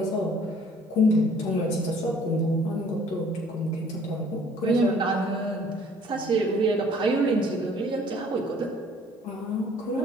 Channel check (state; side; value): normal; both; correlation 0.56